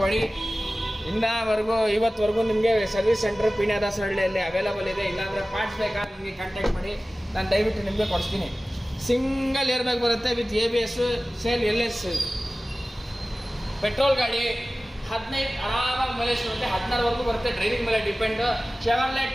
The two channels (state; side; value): normal; both; correlation 0.97